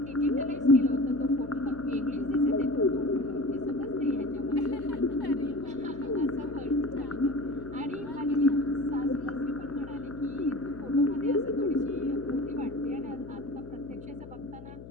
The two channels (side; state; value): left; noise; hum, 15 dB below the sound